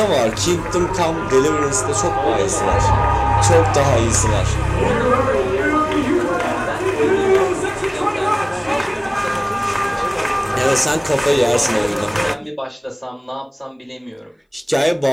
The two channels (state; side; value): identical; both; correlation 1.00